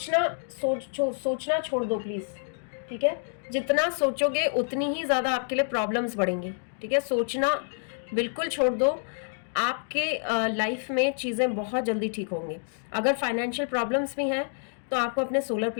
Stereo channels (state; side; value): silent; right; digital silence